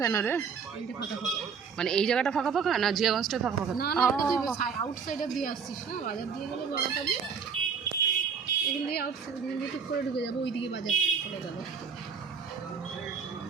কেন রে? এইটা ফাঁকা ফাঁকা মানে এই জায়গাটা ফাঁকা ফাঁকা না, জিয়াগঞ্জটাই ফাঁকা ফাঁকা? না না, এটা তুই আউটসাইডার দিয়ে আসছিস না, বাজার দিয়ে গেলে বড় পাবি। এখান দিয়ে আউটসাইড দিয়ে টুক করে ঢুকে যাবো, ওইদিকে বাজার চলে যাবো।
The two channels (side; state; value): left; quieter; 6.2 dB